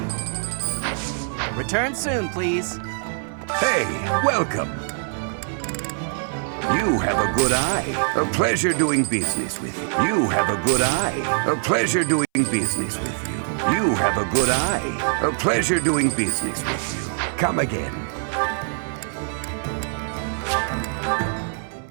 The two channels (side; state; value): left; silent; 63 dB below the other